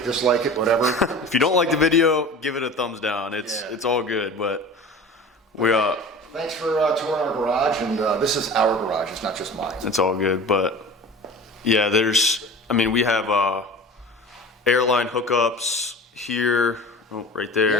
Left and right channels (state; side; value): normal; both; correlation 0.37